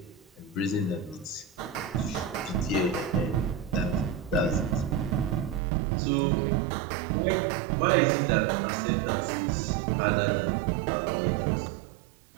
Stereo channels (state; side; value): drops out; left; at 5.6 s